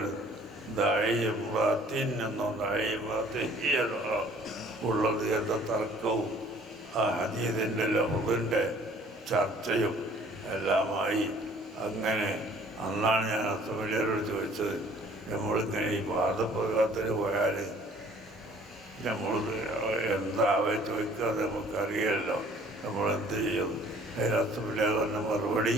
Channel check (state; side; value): normal; both; correlation 0.55